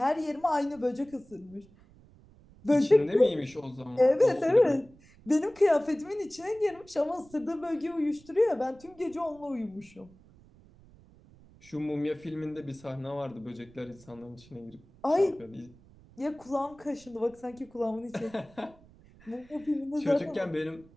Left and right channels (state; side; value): noise; right; rumble, 25 dB below the sound